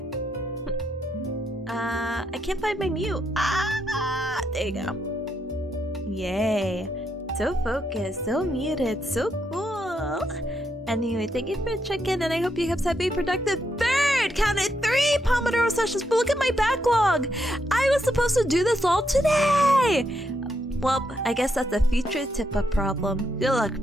I can't find my mute. There you go. Yay. So focused, so muted, so cool. Anyway, thank you for checking, and I hope you guys have a productive third. Counted 3 Pomodoro sessions, but look at my backlog. I was supposed to do this all today. Well, I guess that's a future Tippa problem. Good luck,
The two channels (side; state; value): both; normal; correlation 0.79